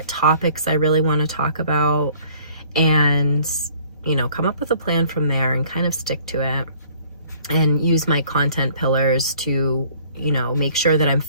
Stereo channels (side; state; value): both; inverted; correlation -0.56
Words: topics I really want to talk about, and, come up with a plan from there and kind of stick to it, and use my content pillars to, make sure that I'm